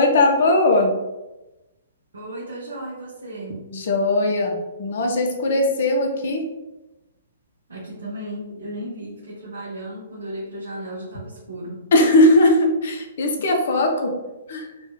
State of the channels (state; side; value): inverted; both; correlation -0.39